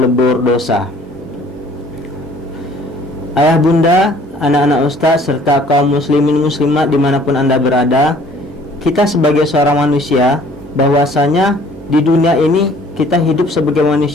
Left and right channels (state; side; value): normal; both; correlation 0.55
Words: dosa. Ayah bunda, anak-anak ustaz serta kaum muslimin muslimat dimanapun anda berada, kita sebagai seorang manusia bahwasanya di dunia ini kita hidup sebagai